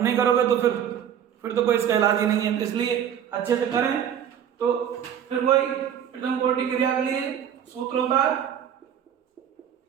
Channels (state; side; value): quieter; left; 9.1 dB